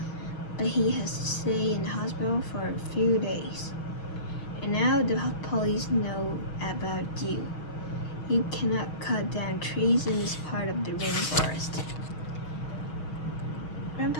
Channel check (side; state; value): right; late; 6.3 ms